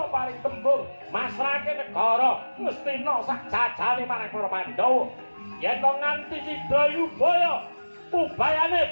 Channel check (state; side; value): inverted; both; correlation -1.00